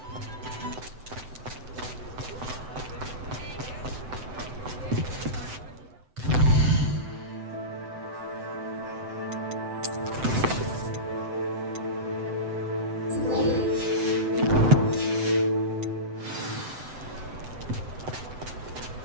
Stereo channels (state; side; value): late; left; 7.9 ms